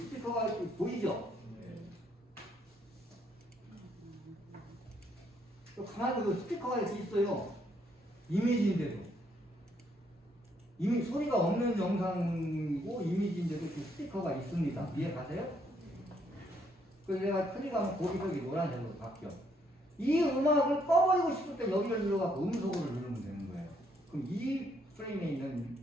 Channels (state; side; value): normal; both; correlation 0.71